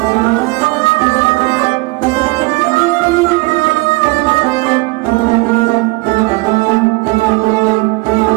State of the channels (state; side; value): quieter; left; 23.6 dB